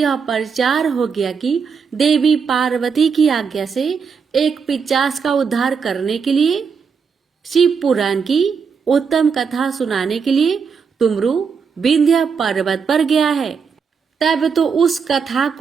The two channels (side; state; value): left; quieter; 5.9 dB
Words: प्रचार हो गया कि देवी पार्वती की आज्ञा से एक पिशाच का उद्धार करने के लिए शिव पुराण की उत्तम कथा सुनाने के लिए तुमरु विंध्य पर्वत पर गया है। तब तो उस कथा